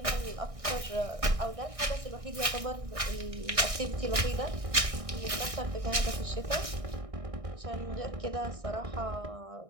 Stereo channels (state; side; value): late; left; 1.6 ms